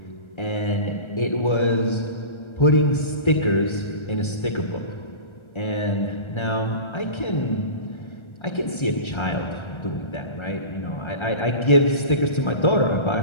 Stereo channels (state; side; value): late; right; 1.3 ms